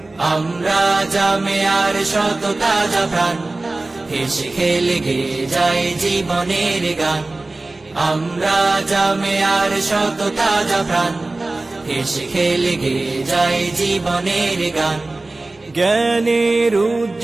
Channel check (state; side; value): quieter; left; 3.0 dB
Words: আমরা জামিয়ার শত তাজা প্রাণ, হেসে খেলে গেয়ে যায় জীবনের গান। আমরা জামিয়ার শত তাজা প্রাণ, হেসে খেলে গেয়ে যায় জীবনের গান। জ্ঞানের